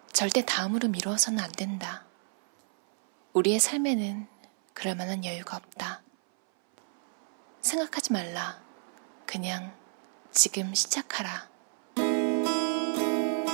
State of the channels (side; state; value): left; silent; 58 dB below the other